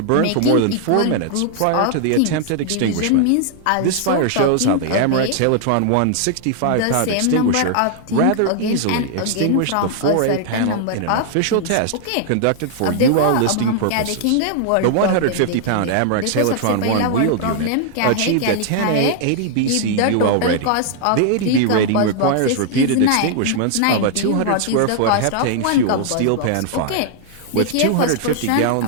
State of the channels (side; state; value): both; different; correlation 0.00